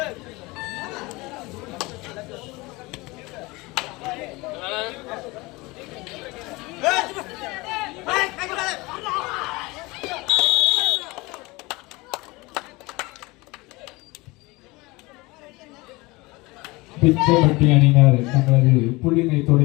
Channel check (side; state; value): right; quieter; 23.1 dB